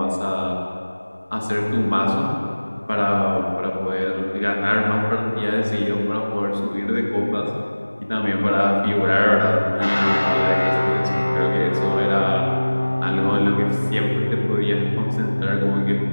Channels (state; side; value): inverted; both; correlation -1.00